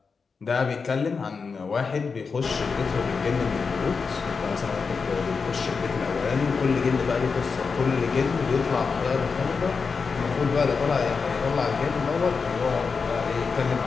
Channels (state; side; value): quieter; right; 5.1 dB